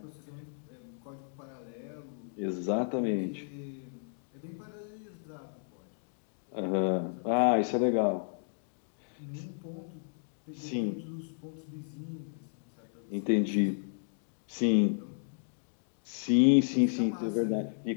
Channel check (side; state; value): right; silent; digital silence